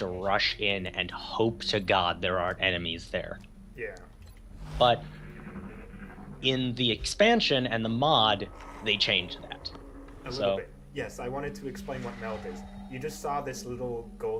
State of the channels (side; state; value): both; identical; correlation 1.00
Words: rush in and hope to God there aren't enemies there. Yeah. But in the expansion and the mod, they changed that. A little bit. Yes, I wanted to explain what meld is. You just saw this little